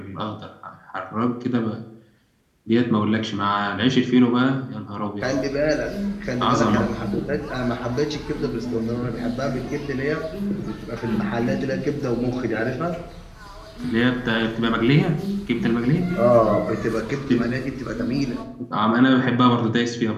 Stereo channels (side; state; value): both; identical; correlation 1.00